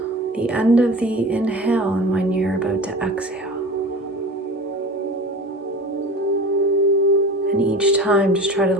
the end of the inhale and when you're about to exhale. And each time, just try to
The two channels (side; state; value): both; normal; correlation 0.36